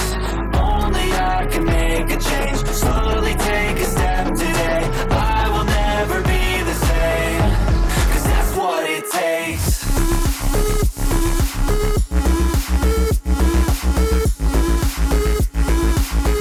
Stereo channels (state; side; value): identical; both; correlation 1.00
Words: Only I can make a change. Slowly take a step today. I will never be the same. Cause that's what it takes.